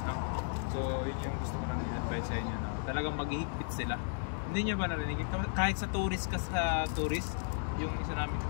no? So, yun yung gusto ko lang i-advise sa inyo, no? Talagang maghihigpit sila. Hindi nyo ba narinig? Kahit sa tourist, yung isa namin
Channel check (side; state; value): right; silent; digital silence